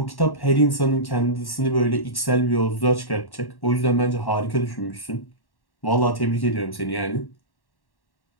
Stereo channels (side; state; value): right; late; 1.1 ms